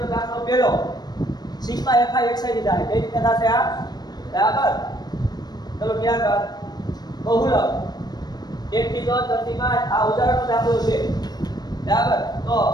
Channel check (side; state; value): right; late; 0.19 ms